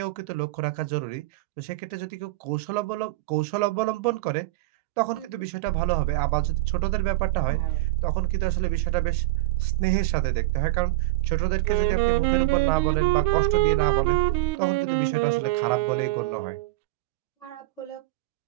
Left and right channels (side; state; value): left; quieter; 18.4 dB